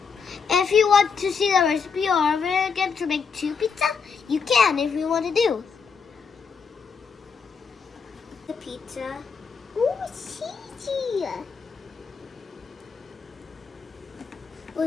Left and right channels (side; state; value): right; quieter; 5.8 dB